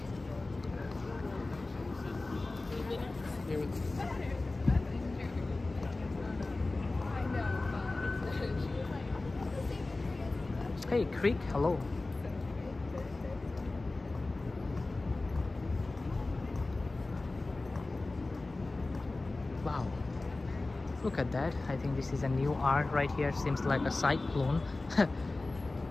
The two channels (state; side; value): quieter; right; 3.2 dB